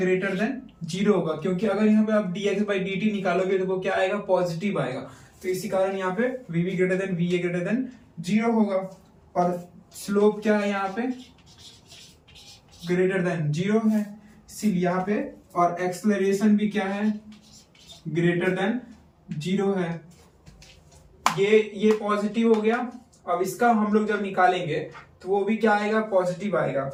देन 0 होगा, क्योंकि अगर यहाँ पे आप dx/dt निकालोगे तो वो क्या आएगा, पॉजिटिव आएगा। तो इसी कारण यहाँ पे vb greater than va greater than 0 होगा। और स्लोप क्या है यहाँ पे, ग्रेटर देन 0 है, इसीलिए यहाँ पे। और एक्सेलरेशन भी क्या है, ग्रेटर देन 0 है। ये पॉजिटिव हो गया। अब इसका हम लोग जब निकालेंगे तो वो भी क्या आएगा, पॉजिटिव आएगा।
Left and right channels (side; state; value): both; identical; correlation 1.00